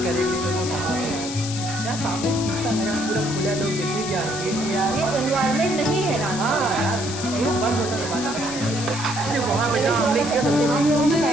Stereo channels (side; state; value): left; noise; hiss, 8 dB below the sound